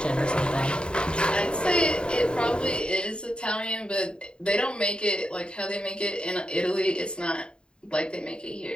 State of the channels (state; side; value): late; right; 0.051 ms